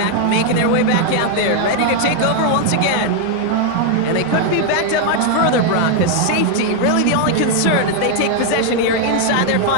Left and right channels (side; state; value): both; different; correlation 0.00